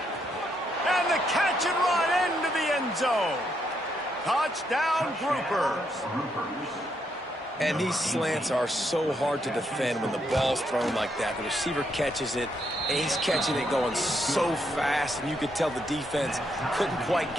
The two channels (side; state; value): both; normal; correlation 0.77